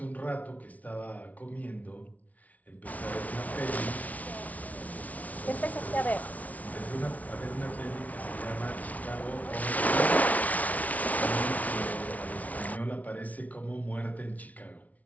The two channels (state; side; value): late; right; 0.071 ms